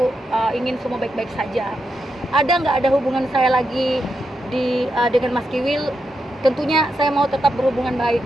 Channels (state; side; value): normal; both; correlation 0.85